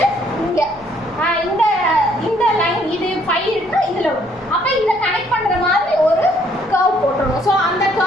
இங்கே இந்த லைன் இது 5 இருக்குன்னா இதில் வரும். அப்போ இதை கனெக்ட் பண்ணுற மாதிரி ஒரு கர்வ் போட்டுருணும். ஸோ அந்த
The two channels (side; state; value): left; noise; rumble, 29 dB below the sound